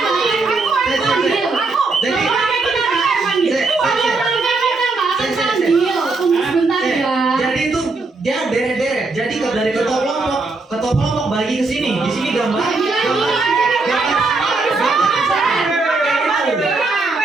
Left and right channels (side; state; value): left; quieter; 3.7 dB